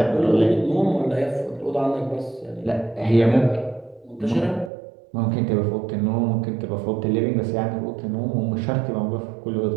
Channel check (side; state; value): left; drops out; at 4.7 s